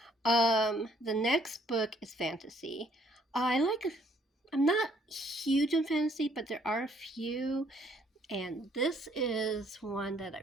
The next book is fantasy. I'm not huge in fantasy, but there are a few, and this is one that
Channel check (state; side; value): normal; both; correlation 0.65